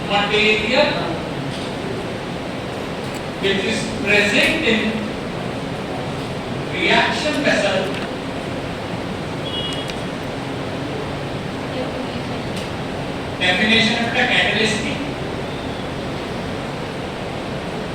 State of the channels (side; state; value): both; identical; correlation 1.00